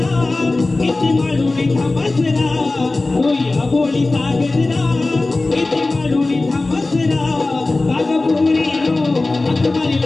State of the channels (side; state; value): right; quieter; 3.2 dB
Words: इति मालून थांबा जरा. या बोलीचा गजरा इति मालून थांबा जरा. कागपुरीनो हाक